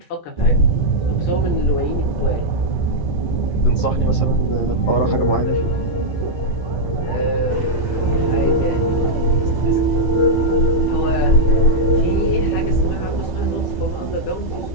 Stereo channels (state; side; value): late; right; 11 ms